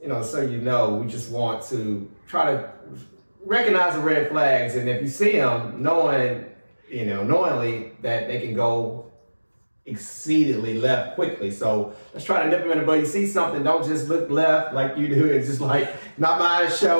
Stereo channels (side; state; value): both; inverted; correlation -1.00